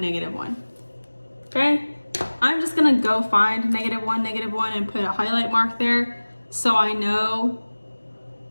Okay, I'm just gonna go find -1, -1 and put a highlight mark there so I know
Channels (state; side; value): inverted; both; correlation -1.00